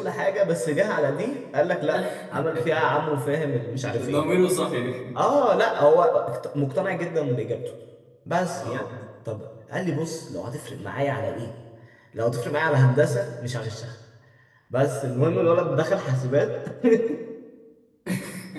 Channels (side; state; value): both; identical; correlation 1.00